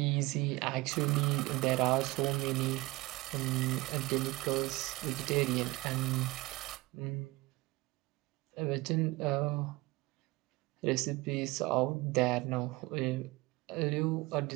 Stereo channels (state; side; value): quieter; left; 21.3 dB